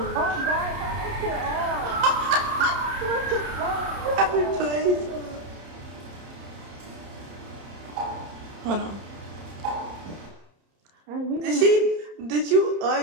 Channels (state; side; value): late; left; 30 ms